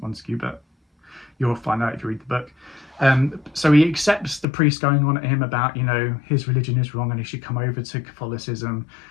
Montague, but you'll find out if you read the book. So he accepts the priest going on at him about, you know, his religion is wrong and he should come over to Catholicism.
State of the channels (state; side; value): drops out; right; at 4.5 s